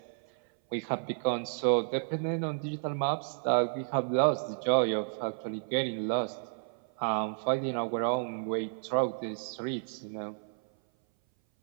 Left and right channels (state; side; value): silent; left; 57 dB below the other